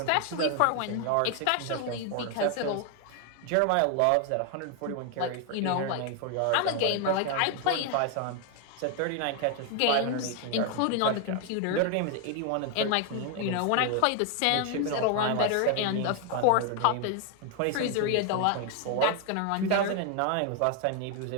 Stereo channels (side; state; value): both; different; correlation 0.00